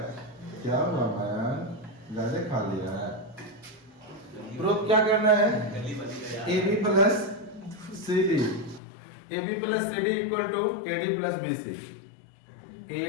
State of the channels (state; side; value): drops out; right; at 8.8 s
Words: क्या हुआ मैन, ज्यादा खा लिया है। प्रूफ क्या करना है, AB plus CD, AB plus CD equal to AD plus BC,